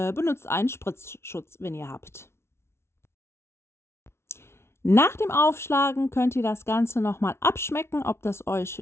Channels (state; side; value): late; right; 0.12 ms